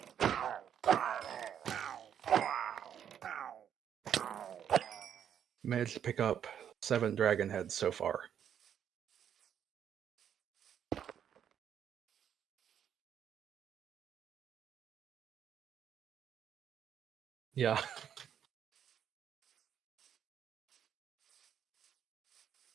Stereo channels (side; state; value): left; quieter; 9.0 dB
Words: Managed to pick up 7 dragon heads so far. Yeah.